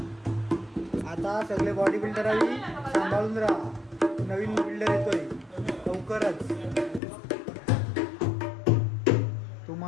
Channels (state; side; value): drops out; right; at 7.0 s